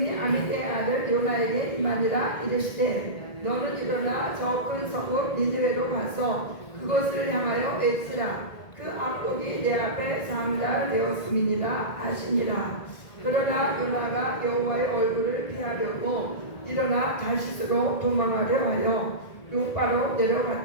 아미떼의 아들 요나에게 임하니라. 이르시되 너는 일어나 저 큰 성읍 니느웨로 가서 그것을 향하여 외치라. 그 악독이 내 앞에 3달 되었음이니라 하시니라. 그러나 요나가 여호와의 얼굴을 피하려고 일어나 다시스로 도망하려 하여 요바로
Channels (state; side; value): late; right; 1.8 ms